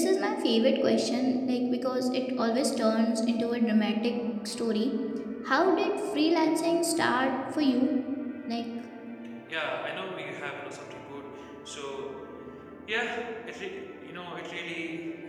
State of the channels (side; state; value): both; identical; correlation 1.00